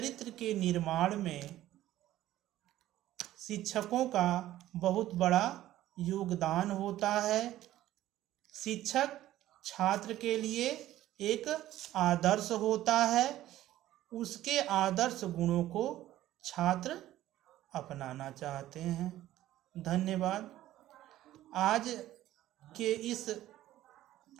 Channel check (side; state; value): left; quieter; 14.2 dB